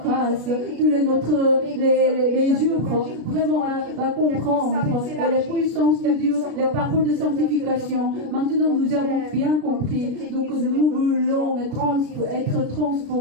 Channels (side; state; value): left; late; 33 ms